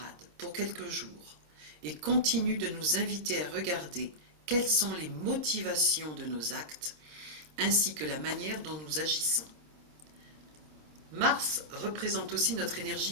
pour quelques jours et continue de nous inviter à regarder quelles sont les motivations de nos actes ainsi que la manière dont nous agissons. Mars représente aussi notre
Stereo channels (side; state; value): left; late; 26 ms